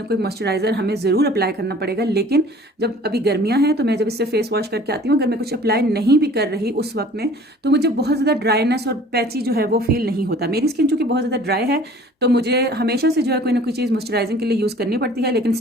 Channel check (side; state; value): both; normal; correlation 0.49